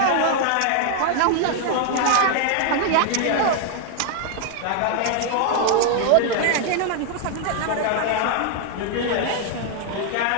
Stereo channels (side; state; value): both; different; correlation 0.00